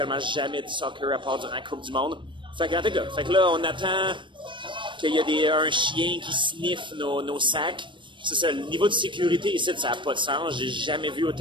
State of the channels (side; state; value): left; late; 0.24 ms